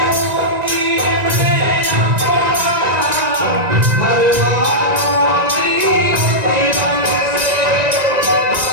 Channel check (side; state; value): left; late; 1.9 ms